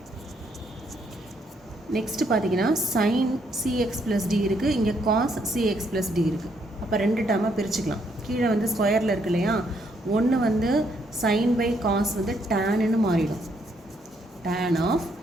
நெக்ஸ்ட்டு பார்த்தீங்கன்னா சைன் சிஎக்ஸ் ப்ளஸ் டி இருக்குது, இங்கே காஸ் சிஎக்ஸ் ப்ளஸ் டி இருக்குது. அப்போ ரெண்டு டேர்மாக பிரிச்சுக்கலாம். கீழே வந்து ஸ்கொயரில் இருக்கு இல்லையா, ஒன்று வந்து சைன் பை காஸ் வந்து டேன்னு மாறிடும், tan of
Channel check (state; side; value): normal; both; correlation 0.73